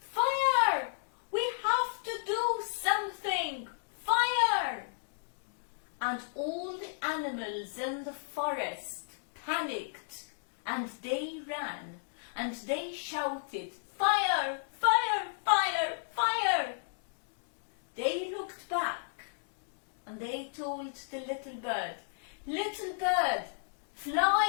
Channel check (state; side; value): silent; right; digital silence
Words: We have to do something! Fire!" And all the animals in the forest panicked, and they ran, and they shouted, "Fire! Fire! Fire! Fire!" They looked back, and they told the little bird, "Little bird,